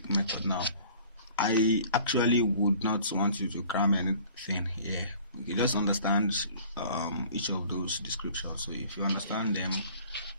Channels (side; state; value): both; inverted; correlation -0.50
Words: method now. I actually would not want you to cram anything here. You just understand each of those descriptions. So if you understand them,